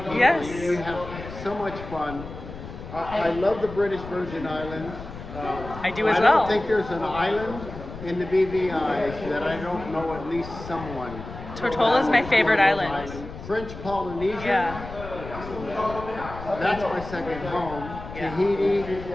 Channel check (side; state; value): left; noise; rumble, 12 dB below the sound